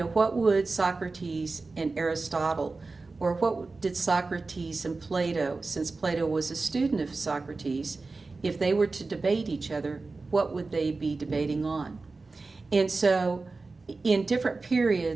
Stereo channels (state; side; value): quieter; left; 3.8 dB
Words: what would Socrates and Aristotle, or what did Socrates and Plato, since Plato was a student of Socrates, if they were to debate each other, what would they be debating on? And so in different